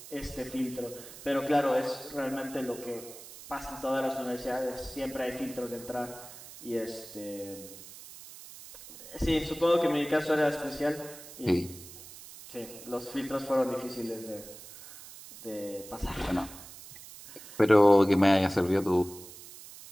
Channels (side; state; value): right; noise; hiss, 16 dB below the sound